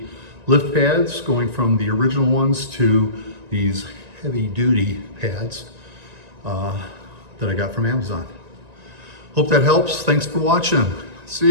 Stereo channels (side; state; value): left; late; 1.9 ms